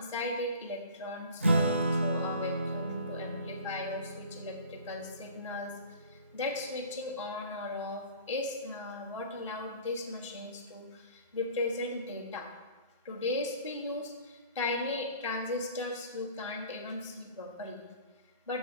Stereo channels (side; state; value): both; inverted; correlation -0.45